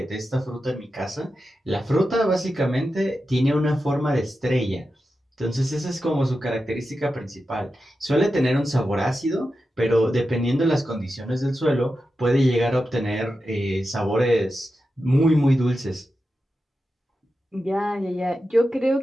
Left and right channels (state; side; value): normal; both; correlation 0.91